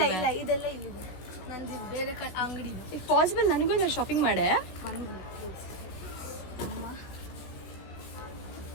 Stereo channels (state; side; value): late; right; 16 ms